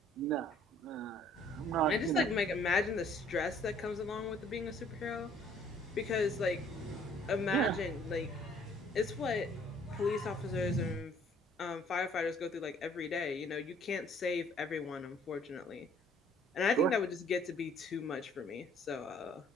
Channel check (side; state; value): both; normal; correlation 0.59